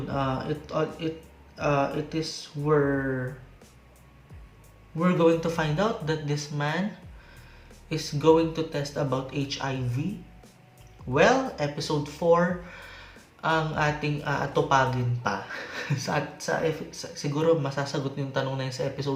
It is where we're going to find out that this man is going to test about HIV. Well, episode 4 ang ating atupagin pa. Siguro masasagot yung tanong na yun sa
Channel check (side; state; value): both; identical; correlation 1.00